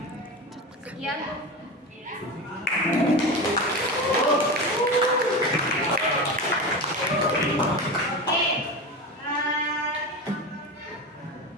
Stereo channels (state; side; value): normal; both; correlation 0.24